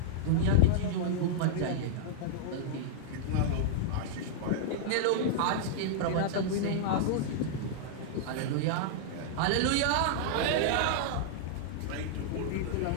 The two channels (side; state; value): both; different; correlation -0.02